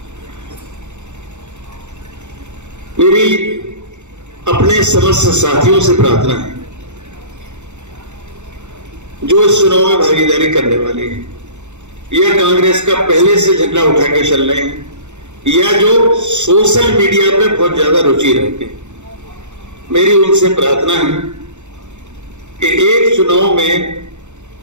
मेरी अपने समस्त साथियों से प्रार्थना है जो इस चुनाव में भागीदारी करने वाले हैं या कांग्रेस का पहले से झंडा उठा के चल रहे हैं या जो सोशल मीडिया पे बहुत ज्यादा रुचि रखते हैं, मेरी उनसे प्रार्थना है कि एक चुनाव में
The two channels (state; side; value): late; left; 0.83 ms